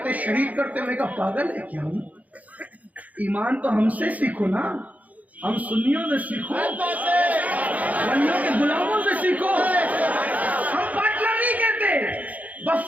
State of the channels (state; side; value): late; left; 0.074 ms